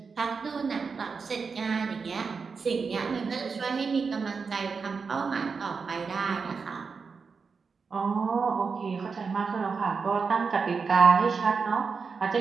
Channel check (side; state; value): left; quieter; 5.2 dB